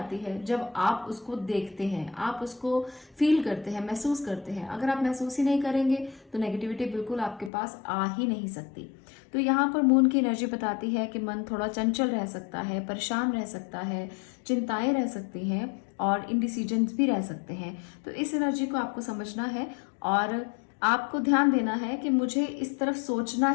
है जब आप उसको देखते हैं, आप उसको फील करते हैं, महसूस करते हैं। अगर आप महसूस ही नहीं करेंगे तो नेगेटिविटी बिल्कुल आपके पास आ ही नहीं सकती। तो यहाँ पर मून की एनर्जी बताती है कि मन थोड़ा चंचल रह सकता है, परेशान रह सकता है, चिंताएं रह सकती हैं और इनडिसीजन्स भी रह सकते हैं। तो इस एनर्जी को आपको समझना है और आपको ध्यान देना है कि मुझे इस तरफ सोचना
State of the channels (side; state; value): right; drops out; at 7.5 s